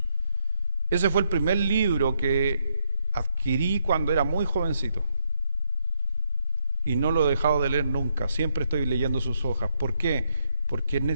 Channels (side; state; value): both; inverted; correlation -0.75